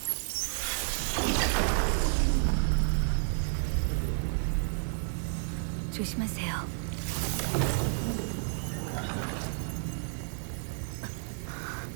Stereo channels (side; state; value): left; silent; digital silence